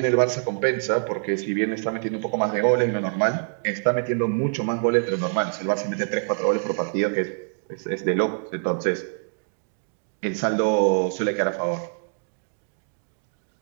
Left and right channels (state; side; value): silent; left; digital silence